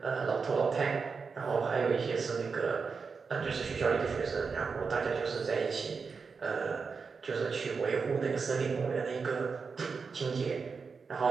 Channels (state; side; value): quieter; left; 5.1 dB